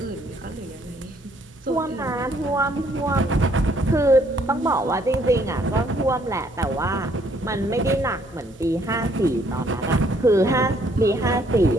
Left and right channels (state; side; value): normal; both; correlation 0.66